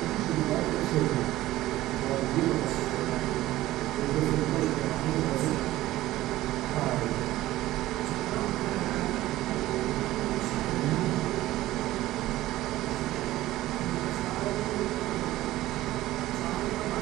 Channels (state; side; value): quieter; left; 16.0 dB